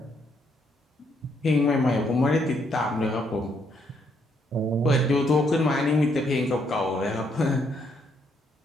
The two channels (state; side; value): normal; both; correlation 0.73